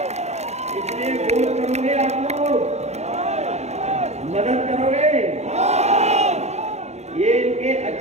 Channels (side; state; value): left; late; 0.32 ms